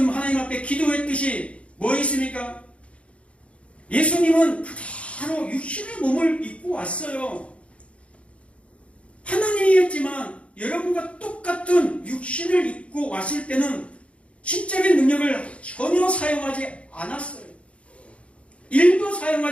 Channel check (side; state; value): right; late; 0.062 ms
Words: 하나님 앞에 기도했듯이 뭐 있습니까? 예수님은 그대로 육신의 몸을 입고 왔어요. 하나님이었지만 여러분과 똑같은 육신을 입고 왔을 때는 신적인 능력을 전혀 사용하지 않았어요. 일도